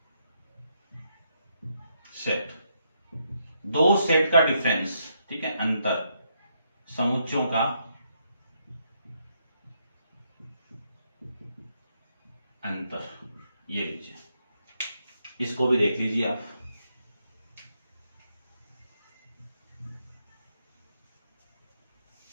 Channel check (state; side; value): inverted; both; correlation -0.77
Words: सेट, दो सेट का डिफरेंस। ठीक है, अंतर, समुच्चयों का अंतर, ये लीजिए, इसको भी देख लीजिए आप।